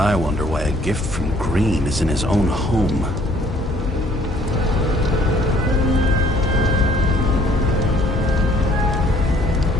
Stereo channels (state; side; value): normal; both; correlation 0.60